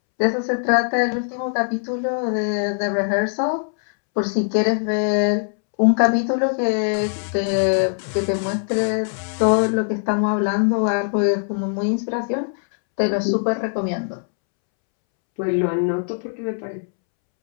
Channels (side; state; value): right; silent; 65 dB below the other